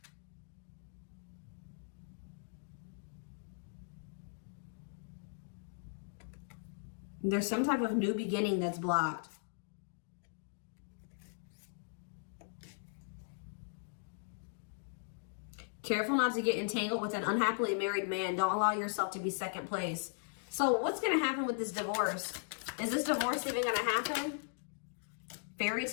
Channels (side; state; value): right; silent; digital silence